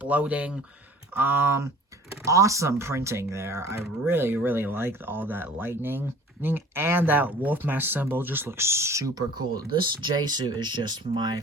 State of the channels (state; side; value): normal; both; correlation 0.46